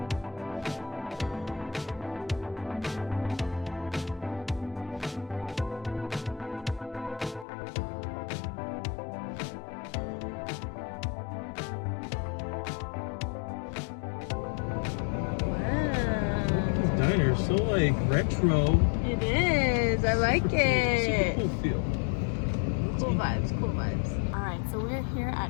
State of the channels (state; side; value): drops out; right; at 7.5 s